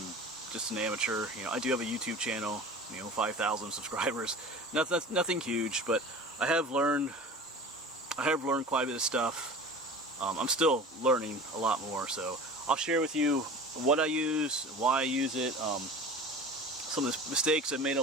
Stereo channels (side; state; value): both; normal; correlation 0.37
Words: just an amateur. You know, I do have a YouTube channel, you know, 5,000 subscribers. Nothing huge, but I have learned quite a bit of stuff. I'm still learning a lot more, so I'll share with you what I use, why I use it, some of the mistakes I've made